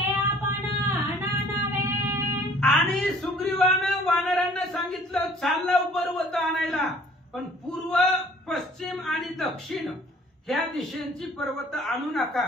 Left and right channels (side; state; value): both; normal; correlation 0.55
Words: आपण नानावे. आणि सुग्रीवानं वानरांना सांगितलं चाललं पर्वत आणायला, पण पूर्व पश्चिम आणि दक्षिण ह्या दिशेंची पर्वत आणू नका,